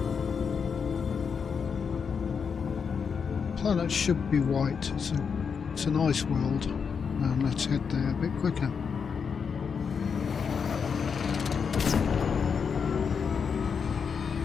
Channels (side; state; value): right; quieter; 6.2 dB